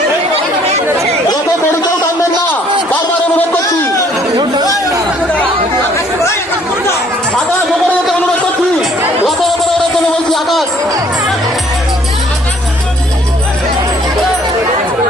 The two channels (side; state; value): both; normal; correlation 0.60